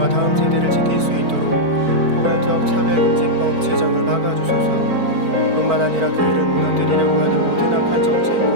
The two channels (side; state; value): left; late; 4.5 ms